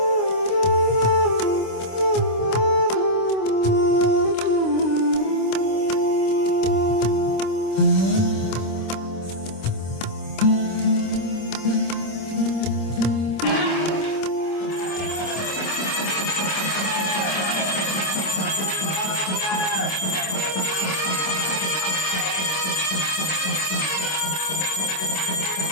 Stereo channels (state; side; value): late; right; 26 ms